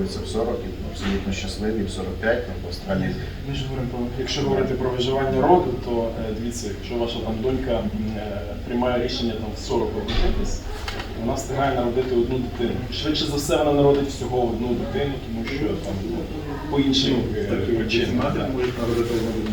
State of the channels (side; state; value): both; identical; correlation 1.00